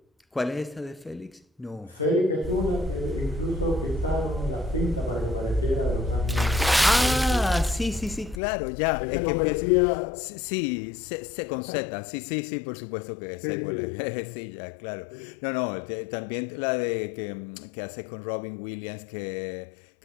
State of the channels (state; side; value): drops out; right; at 8.4 s